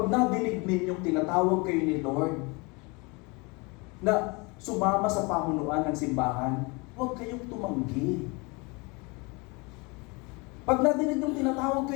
nadinig ninyong tinatawag kayo ni Lord na sumama sa pamunuan ng simbahan, huwag kayong tumanggi. Pag nadinig ninyong tinatawag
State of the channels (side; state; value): right; quieter; 28.0 dB